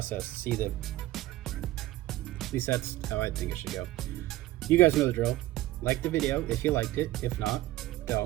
see the... At least that's how I think it should go. You guys know the drill. Like the video if you liked it. If not,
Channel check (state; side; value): quieter; left; 16.5 dB